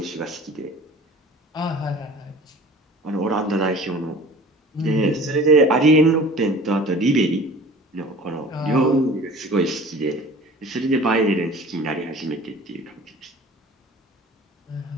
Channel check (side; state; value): both; normal; correlation 0.44